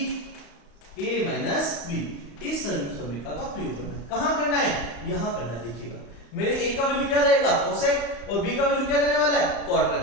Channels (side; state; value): right; late; 34 ms